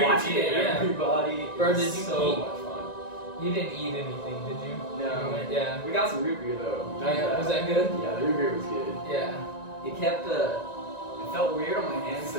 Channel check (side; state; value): right; late; 1.9 ms